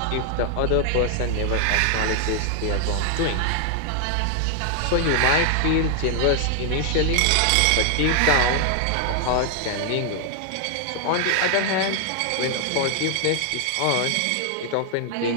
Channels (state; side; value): different; both; correlation 0.00